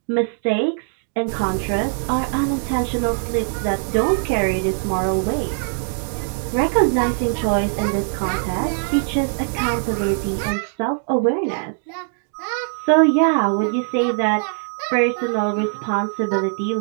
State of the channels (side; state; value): left; silent; 65 dB below the other